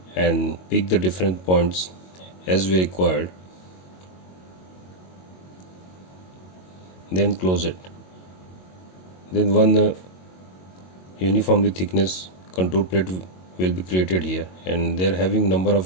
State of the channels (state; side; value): late; right; 22 ms